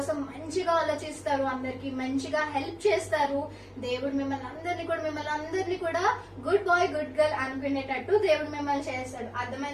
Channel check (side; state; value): both; identical; correlation 1.00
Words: మంచిగా ఆలోచిస్తారు, అందరికి మంచిగా హెల్ప్ చేస్తారు. దేవుడు మిమ్మల్ని అందరినీ కూడా గుడ్ బాయ్ గుడ్ గర్ల్ అనుకునేటట్టు దేవుడు మిమ్మల్ని చేస్తాడు.